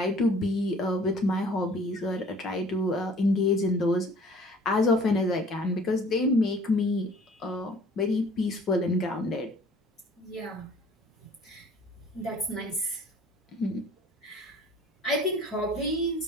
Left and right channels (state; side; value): normal; both; correlation 0.52